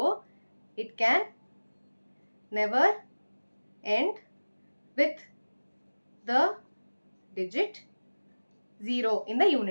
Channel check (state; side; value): inverted; both; correlation -1.00